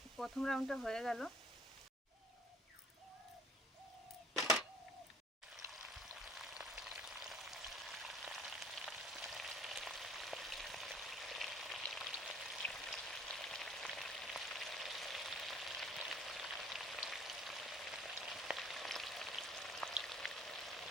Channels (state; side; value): normal; both; correlation 0.54